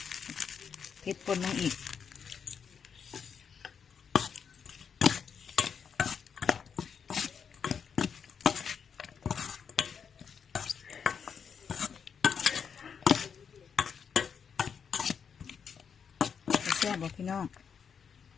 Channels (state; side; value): quieter; right; 6.8 dB